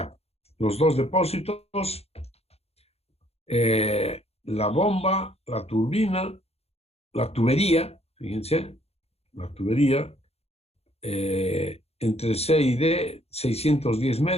los dos depósitos, la bomba, la turbina, la tubería, fíjense, la tubería, entre C y D, 610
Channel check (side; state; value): right; late; 0.30 ms